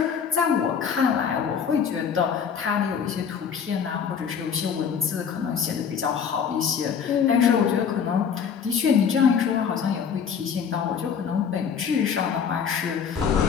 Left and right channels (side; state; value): right; quieter; 7.1 dB